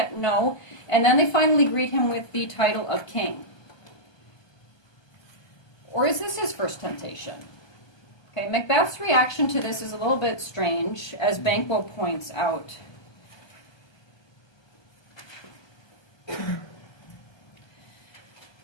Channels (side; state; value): right; late; 1.2 ms